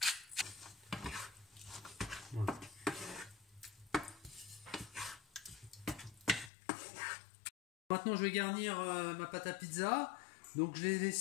Voilà. Maintenant je vais garnir ma pâte à pizza. Donc je l'ai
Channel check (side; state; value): right; drops out; at 6.5 s